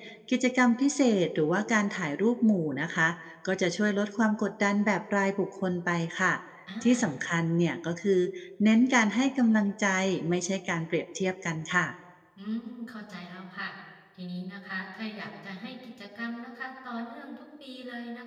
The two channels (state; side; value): identical; both; correlation 1.00